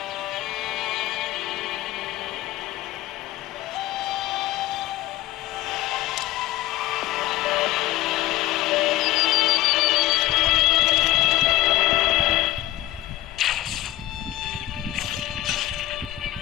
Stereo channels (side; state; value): right; quieter; 15.6 dB